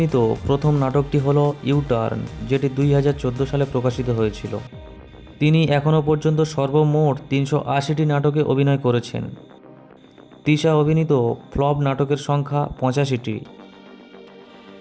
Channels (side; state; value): both; identical; correlation 1.00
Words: প্রথম নাটকটি হল ইউটার্ন, যেটি 2014 সালে প্রকাশিত হয়েছিল। তিনি এখনও পর্যন্ত সর্বমোট 380টি নাটকে অভিনয় করেছেন। তিশা অভিনীত ফ্লপ নাটকের সংখ্যা 85টি।